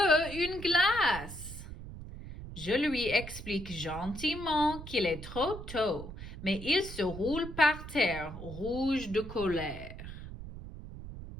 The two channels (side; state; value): right; noise; rumble, 11 dB below the sound